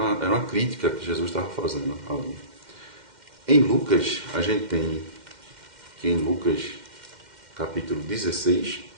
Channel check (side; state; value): left; late; 2.1 ms